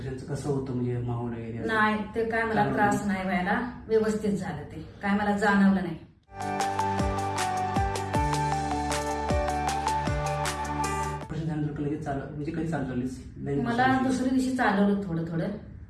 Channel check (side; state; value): both; identical; correlation 1.00